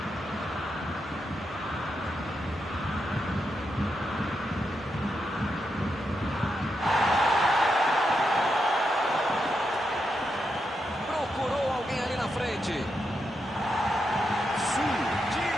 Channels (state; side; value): normal; both; correlation 0.84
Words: Procurou alguém ali na frente.